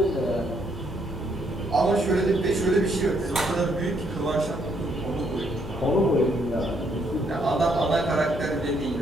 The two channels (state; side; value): normal; both; correlation 0.71